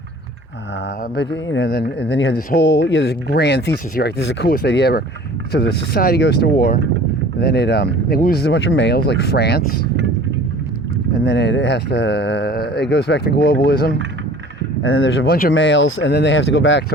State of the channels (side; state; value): both; normal; correlation 0.46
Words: but then you had this whole, this grand thesis here, right? This is the coolest idea ever. So the society goes to war, and then it loses a bunch of males, like France, and then it goes back to globalism, and then there's a bunch of males, and then they have to go back to